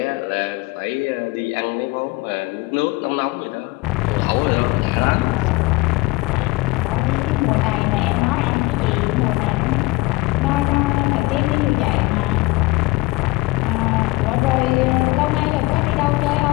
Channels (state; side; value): quieter; right; 21.9 dB